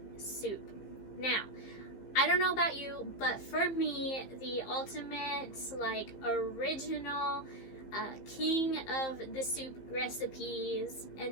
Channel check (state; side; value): late; right; 15 ms